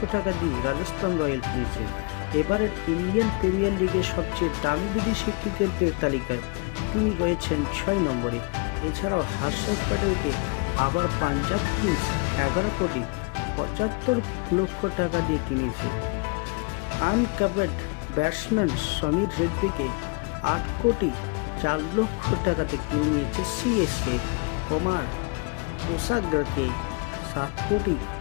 টাকা দিয়ে রাজস্থান রয়্যাল কিনেছে। এবারের ইন্ডিয়ান প্রিমিয়ার লিগের সবচেয়ে দামি বিদেশি ক্রিকেটদের তালিকায় তিনি রয়েছেন 6 নম্বরে। এছাড়াও হর্ষদ প্যাটেলকে আবার পাঞ্জাব কিংস 11,75,00,000 টাকা দিয়ে কিনেছে। আনক্যাপড ব্যাটসম্যান সমীর রেজভিকে 8,04,00,000 টাকাতে কিনে নিয়েছে সিএসকে। কুমার পোসাগকে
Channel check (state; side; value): quieter; right; 31.6 dB